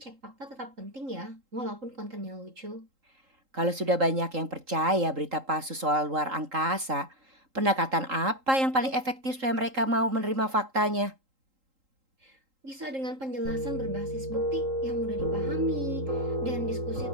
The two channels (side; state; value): left; late; 3.8 ms